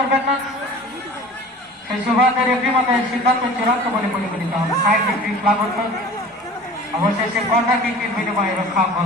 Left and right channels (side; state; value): both; normal; correlation 0.42